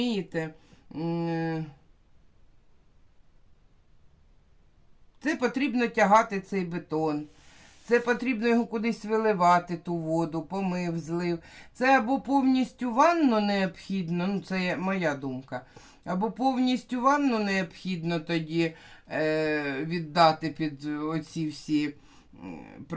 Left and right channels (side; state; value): both; identical; correlation 1.00